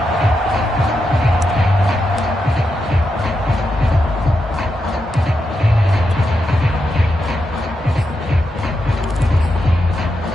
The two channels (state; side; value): normal; both; correlation 0.85